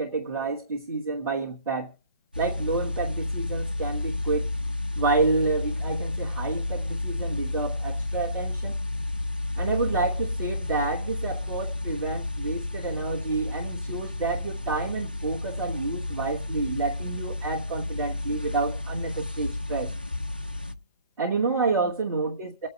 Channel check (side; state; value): both; inverted; correlation -0.57